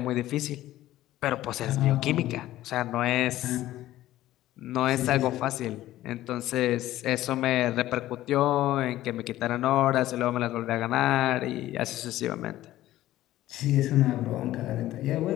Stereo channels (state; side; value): quieter; right; 14.7 dB